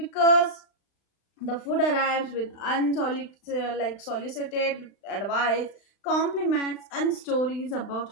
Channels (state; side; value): late; right; 36 ms